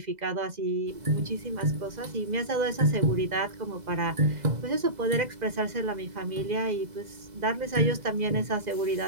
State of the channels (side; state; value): left; late; 2.0 ms